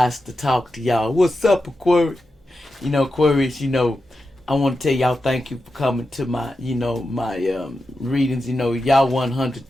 to talk to y'all. What's up, Aquarius? Aquarius, I want to tell y'all thank you for coming to my, my readings. Y'all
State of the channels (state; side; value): normal; both; correlation 0.90